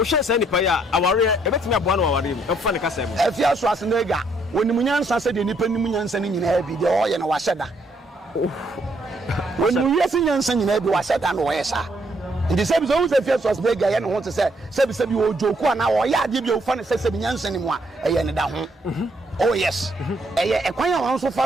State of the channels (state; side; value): normal; both; correlation 0.70